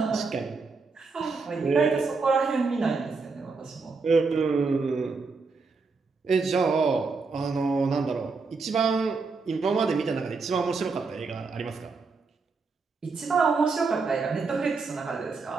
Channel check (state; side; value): quieter; left; 4.4 dB